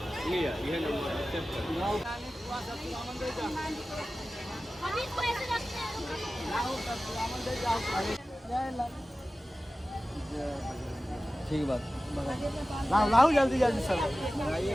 लिया? ये नंबर ठीक बात। लाओ जल्दी जल्दी सर बनाइए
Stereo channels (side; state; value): both; normal; correlation 0.95